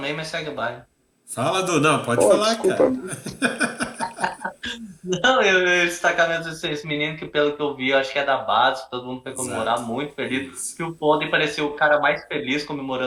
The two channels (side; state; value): both; identical; correlation 1.00